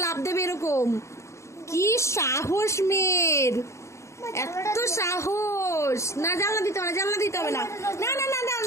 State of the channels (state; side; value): late; right; 0.14 ms